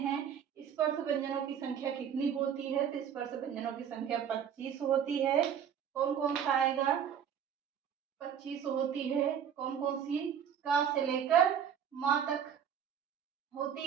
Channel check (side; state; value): left; quieter; 8.4 dB